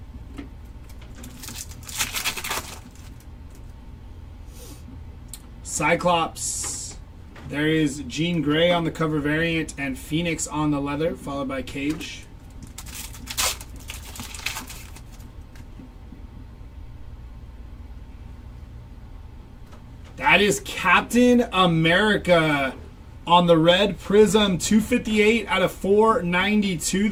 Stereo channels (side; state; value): both; identical; correlation 1.00